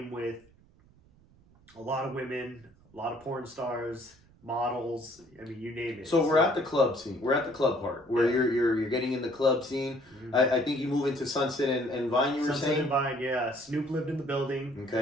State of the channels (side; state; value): right; noise; rumble, 28 dB below the sound